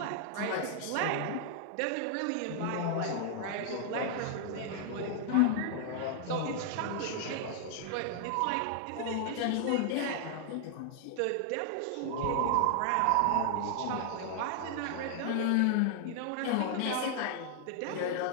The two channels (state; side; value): different; both; correlation 0.00